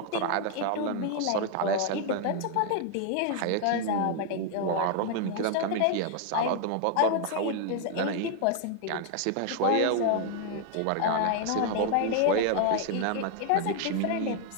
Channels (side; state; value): both; different; correlation 0.01